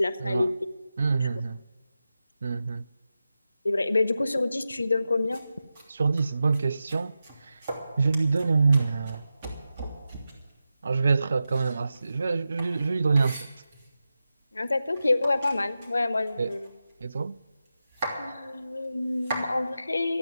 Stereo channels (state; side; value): inverted; both; correlation -0.92